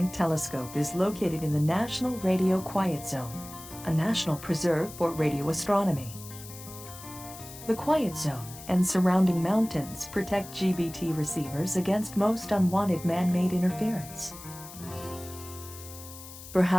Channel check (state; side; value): noise; left; hiss, 15 dB below the sound